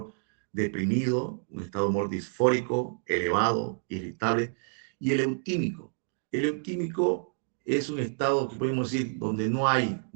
deprimido, un estado de humor disfórico, elevado, irritable, y el eutímico. El eutímico es un estado que podemos decir donde no hay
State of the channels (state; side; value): silent; left; digital silence